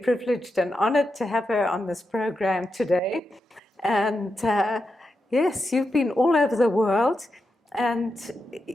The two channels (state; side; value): normal; both; correlation 0.87